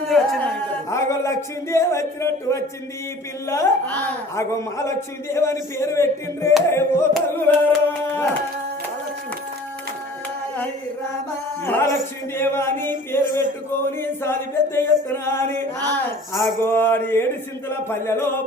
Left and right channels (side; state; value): both; normal; correlation 0.46